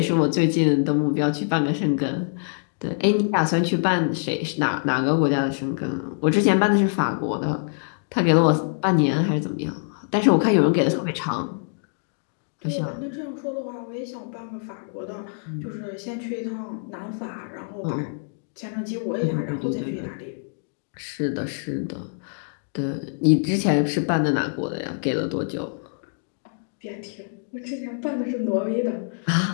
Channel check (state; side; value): silent; right; digital silence